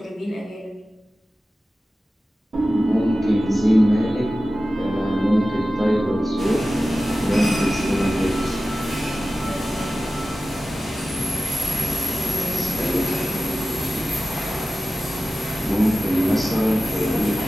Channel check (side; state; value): both; normal; correlation 0.94